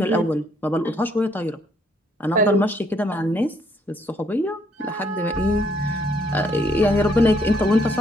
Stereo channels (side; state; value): both; normal; correlation 0.68